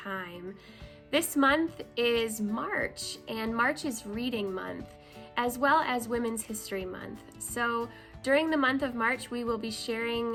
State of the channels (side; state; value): both; identical; correlation 1.00